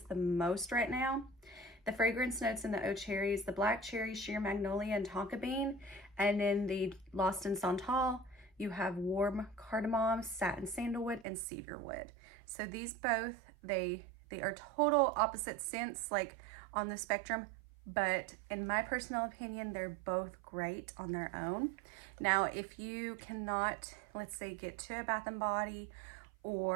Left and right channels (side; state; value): left; drops out; at 11.2 s